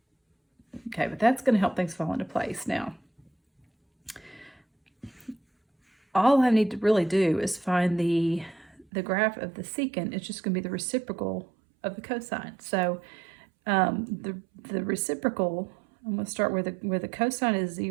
Okay, but that's going to help things fall into place. Now, all I need to really do is find the graph of the secant. It's just going to be the reciprocal of the cosine. So the reciprocal, I'm going to start where the cosine is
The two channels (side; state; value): left; drops out; at 8.8 s